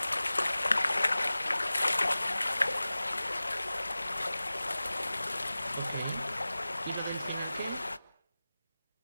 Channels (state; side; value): inverted; both; correlation -0.97